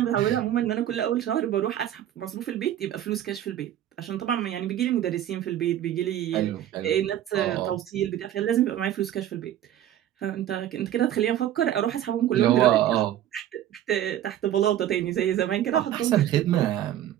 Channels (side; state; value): left; quieter; 11.7 dB